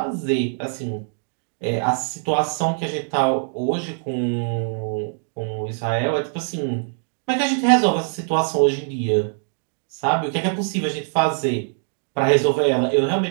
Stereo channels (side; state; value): left; silent; 64 dB below the other